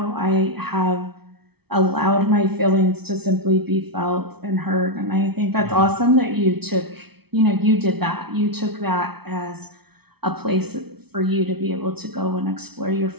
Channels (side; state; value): left; late; 0.98 ms